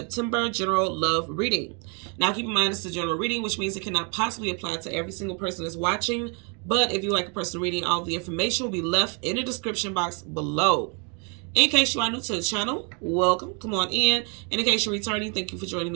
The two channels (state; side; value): quieter; left; 36.3 dB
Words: general love reading. Now keep in mind it's a general reading, which means it cannot possibly apply to every single person that's watching. But if you like a personal reading, all the information will be left in the description box below. In case you are new to the channel, welcome. Come on in. And in case you're returning, thank you for joining